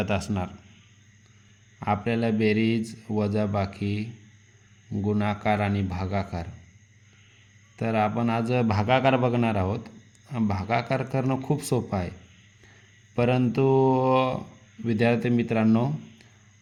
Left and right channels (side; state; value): both; identical; correlation 1.00